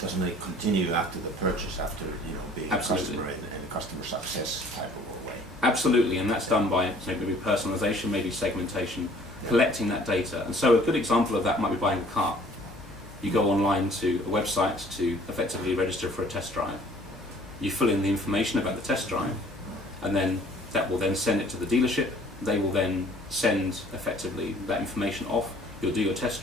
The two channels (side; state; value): both; normal; correlation 0.55